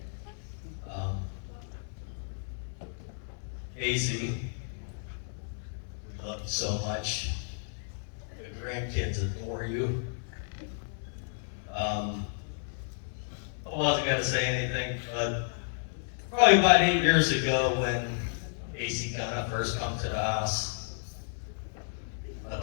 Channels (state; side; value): silent; right; digital silence